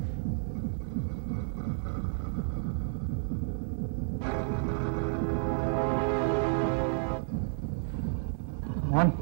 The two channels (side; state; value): left; silent; digital silence